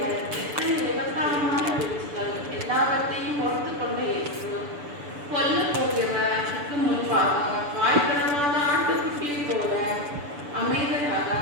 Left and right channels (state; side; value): late; left; 6.9 ms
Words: எத்தனை விபத்தாரமான பேச்சுகள் எல்லாவற்றையும் பொறுத்து கொண்ட இயேசு கொல்ல போகிறவருக்கு முன்பாக வாய்ப்பிடமாத ஆட்டுக்குட்டியை போல அமைதியாக